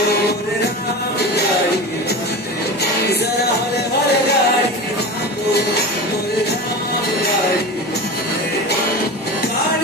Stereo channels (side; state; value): both; normal; correlation 0.29